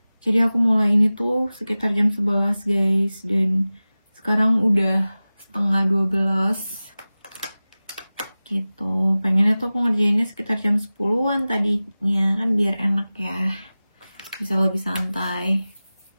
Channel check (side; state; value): both; inverted; correlation -0.97